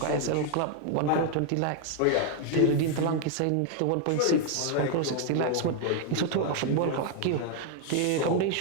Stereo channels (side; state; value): both; different; correlation 0.00